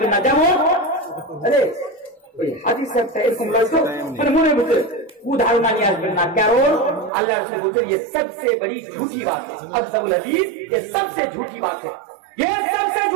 না। যেমন আরে ওই হাদিস একটা এরকম লাগতো, মানে মনে বুঝে কুধারণা নিয়ে আসবেন না, কারণ আল্লাহ রাসূল বলেছেন ये सबसे बड़ी झूठी बात है, अक़ज़बुल हदीस ये सबसे झूठी बात है, ये सबसे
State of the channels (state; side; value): drops out; left; at 7.1 s